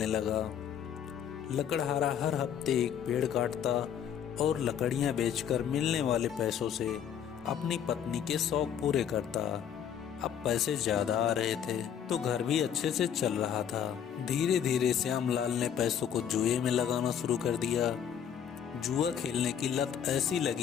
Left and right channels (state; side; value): quieter; right; 8.8 dB